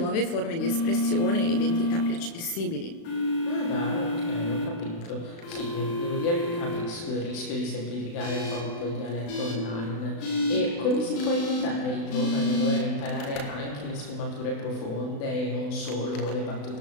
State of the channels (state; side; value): late; right; 36 ms